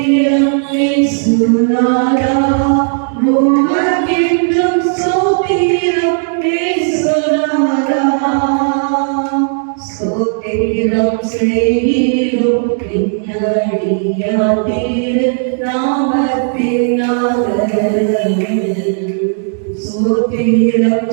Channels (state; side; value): silent; left; digital silence